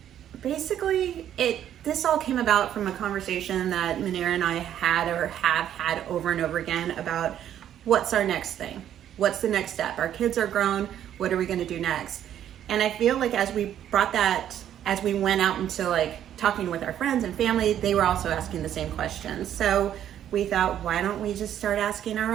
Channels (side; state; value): left; quieter; 10.6 dB